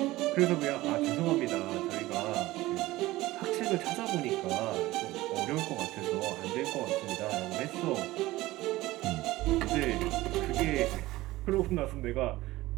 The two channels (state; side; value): quieter; left; 18.0 dB